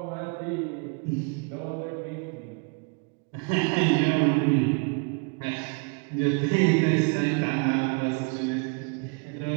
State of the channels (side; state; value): left; quieter; 33.7 dB